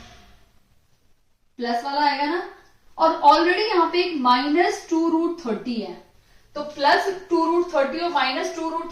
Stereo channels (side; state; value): both; identical; correlation 1.00